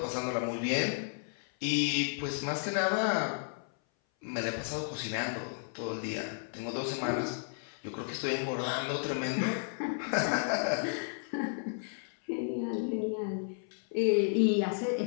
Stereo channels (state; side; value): silent; right; 56 dB below the other